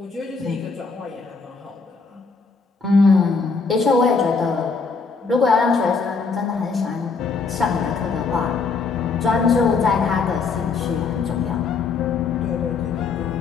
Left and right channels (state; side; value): quieter; right; 4.7 dB